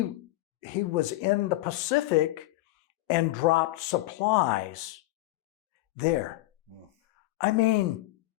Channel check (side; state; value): right; quieter; 18.2 dB